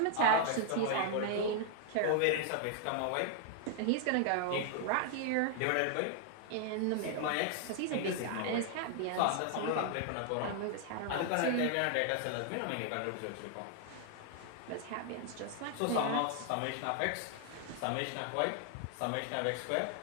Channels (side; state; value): both; different; correlation 0.00